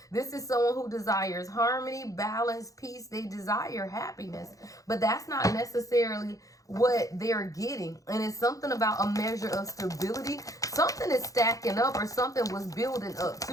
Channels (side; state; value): right; late; 0.17 ms